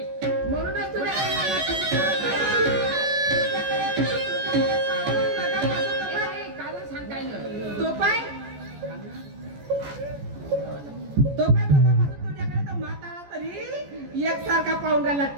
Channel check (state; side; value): late; left; 14 ms